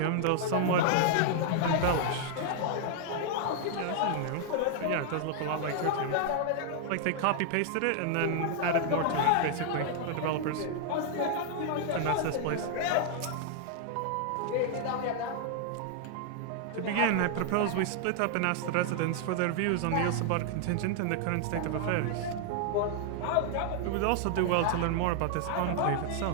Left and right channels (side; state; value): both; different; correlation 0.00